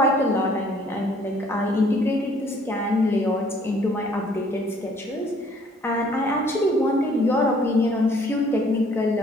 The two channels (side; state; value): both; normal; correlation 0.60